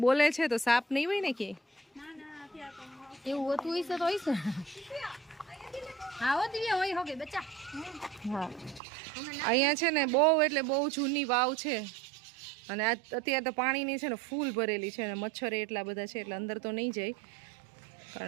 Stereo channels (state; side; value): drops out; left; at 8.8 s